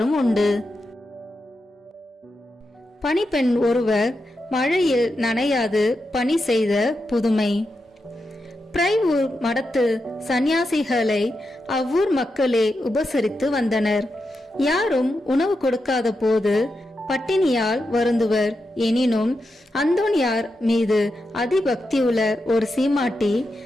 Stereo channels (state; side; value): normal; both; correlation 0.87